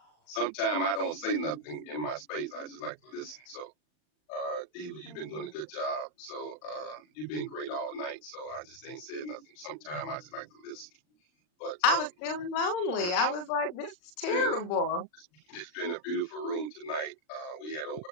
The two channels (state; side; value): late; right; 40 ms